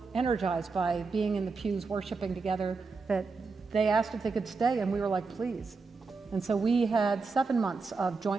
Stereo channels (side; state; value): left; quieter; 4.3 dB